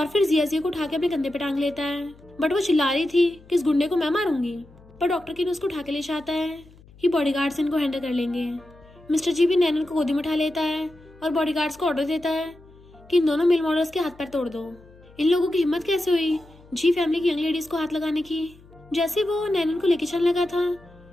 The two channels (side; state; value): left; noise; hum, 25 dB below the sound